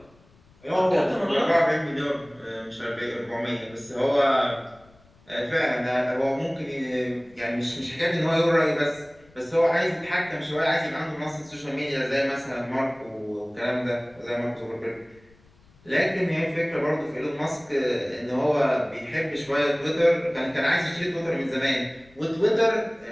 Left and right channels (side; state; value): left; noise; rumble, 29 dB below the sound